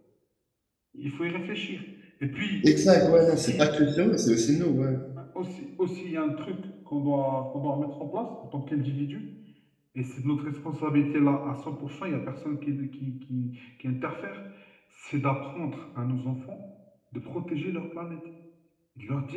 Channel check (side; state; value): both; identical; correlation 1.00